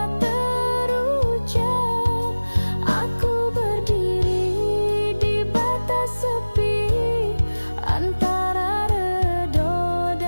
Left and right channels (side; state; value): both; inverted; correlation -1.00